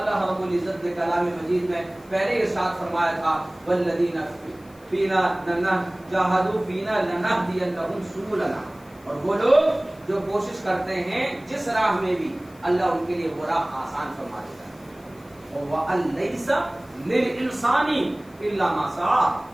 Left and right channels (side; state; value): left; noise; hiss, 28 dB below the sound